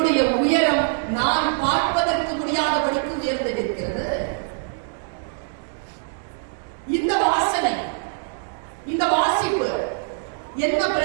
உயரம் நான் பார்ப்பதற்கு முடியாதபடிக்கு உயர்ந்து நிற்கிறது. இந்த வாசனை, இந்த வாசிப்பு என்ன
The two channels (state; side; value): silent; left; digital silence